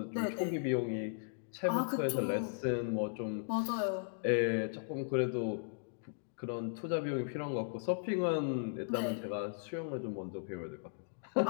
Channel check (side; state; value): right; silent; digital silence